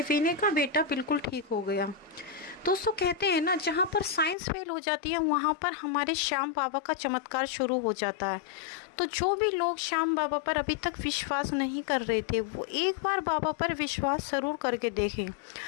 विनय का बेटा बिल्कुल ठीक हो गया। दोस्तों, कहते हैं ना, जहाँ पर साइंस फेल हो जाती है वहाँ पर हमारे श्याम बाबा का चमत्कार शुरू हो जाता है। तो जो भी लोग श्याम बाबा पर अभी तक विश्वास नहीं कर रहे थे, वो एक बार बाबा पर विश्वास ज़रूर करके देखें।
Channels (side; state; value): right; drops out; at 4.4 s